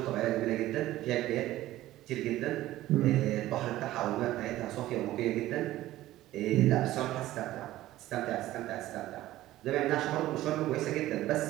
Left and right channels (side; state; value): left; quieter; 15.3 dB